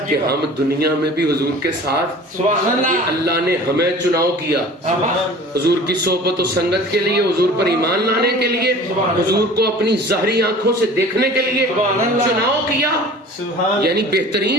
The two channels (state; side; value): normal; both; correlation 0.44